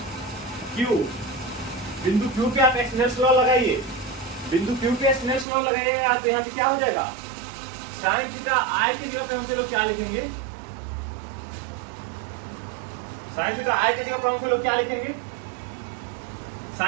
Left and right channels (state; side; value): drops out; left; at 5.5 s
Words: Q. बिंदु क्यू पे आप स्नेल्स लॉ लगाइए, बिंदु क्यू पे स्नेल्स लॉ लगाइएगा तो यहाँ पे क्या हो जाएगा, साइन थीटा आई की जगह पे हम लोग क्या लिखेंगे, साइन थीटा आई की जगह पर हम लोग क्या लिखेंगे,